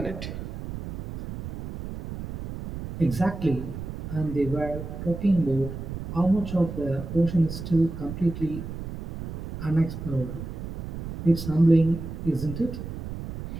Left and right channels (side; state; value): right; noise; rumble, 8 dB below the sound